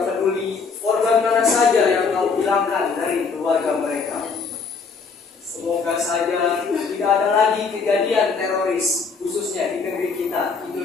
peduli korban mana saja yang kau hilangkan dari keluarga mereka. Semoga saja tidak ada lagi kejadian teroris, khususnya di negeri kita,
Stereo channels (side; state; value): right; quieter; 5.0 dB